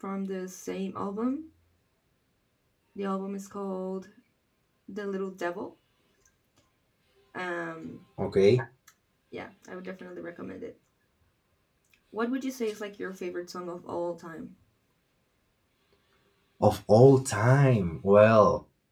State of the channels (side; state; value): both; identical; correlation 1.00